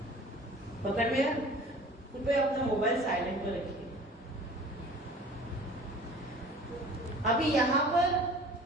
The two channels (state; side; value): normal; both; correlation 0.45